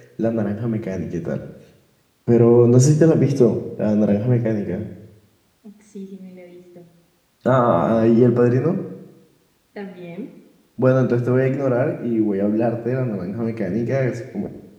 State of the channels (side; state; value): both; identical; correlation 1.00